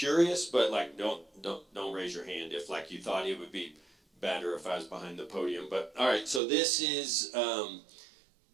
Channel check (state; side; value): drops out; left; at 6.4 s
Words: but like don't raise your hand if like you thought it would be better if I was behind the podium. But all right, so this is